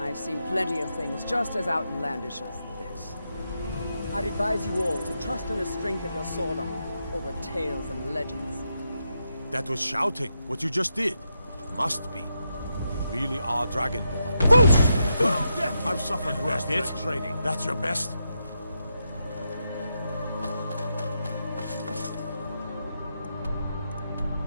I've seen plenty of things just as outlandish as this. I'd advise you all to trust in the strength of your sword arm over tales and legends. That was shouting, what you just did. Must be. You really are Dragonborn. I've suffered worse than training. That's your best?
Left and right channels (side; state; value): both; inverted; correlation -0.84